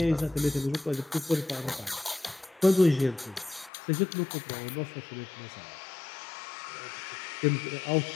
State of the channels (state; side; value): drops out; right; at 3.7 s